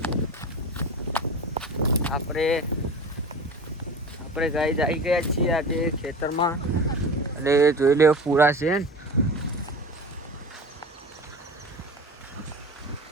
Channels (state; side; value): normal; both; correlation 0.33